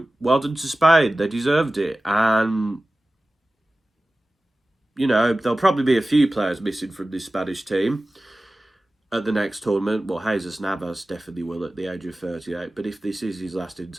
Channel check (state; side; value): normal; both; correlation 0.96